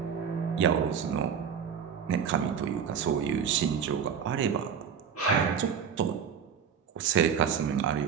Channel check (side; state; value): left; quieter; 7.3 dB